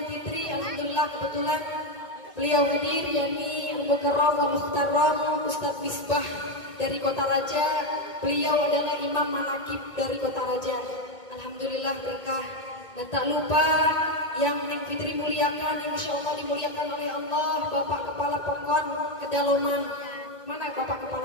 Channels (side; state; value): right; late; 1.8 ms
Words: Fitri. Alhamdulillah kebetulan beliau hadir, yakni Al-Mukarram wa Muhtaram Ustaz Misbah dari Kota Raja. Beliau adalah Imam Manakib dari Kota Raja. Alhamdulillah berkah. Dan tak lupa yang Neng Fitri muliakan, yang insya Allah dimuliakan oleh Allah, Bapak Kepala Pokon Kedaloman. Mana Bapak